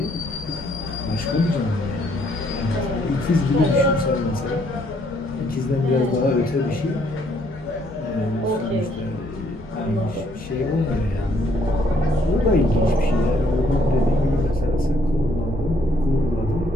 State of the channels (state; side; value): normal; both; correlation 0.68